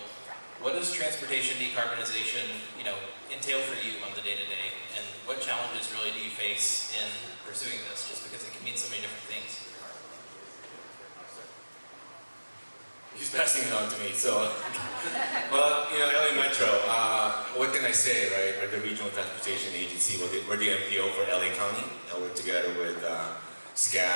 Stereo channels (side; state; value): both; inverted; correlation -1.00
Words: what does transportation decarbonization, entail for you on the day-to-day, and what challenges really do you face in pursuing this, just because it can mean so many different things? He's passing it on to me, so, well, LA Metro, what can I say, right? We're the Regional Transportation Agency, we're the MPO for LA County. I work together with